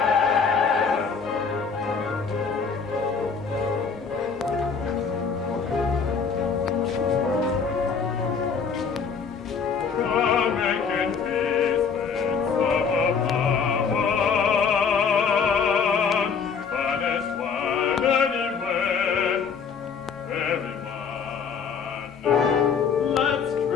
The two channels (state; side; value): quieter; right; 5.9 dB